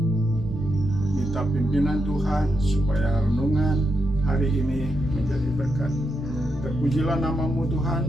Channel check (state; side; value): normal; both; correlation 0.83